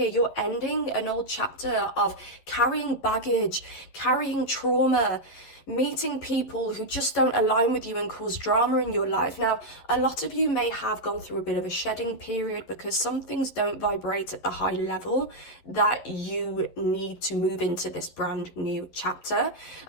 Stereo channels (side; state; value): right; late; 12 ms